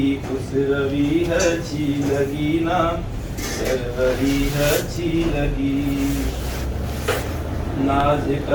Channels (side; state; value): both; identical; correlation 1.00